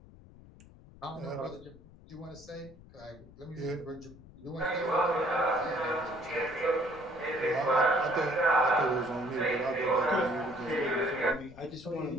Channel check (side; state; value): left; noise; rumble, 21 dB below the sound